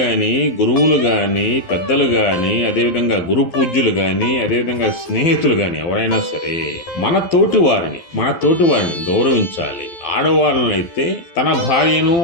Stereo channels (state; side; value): late; right; 11 ms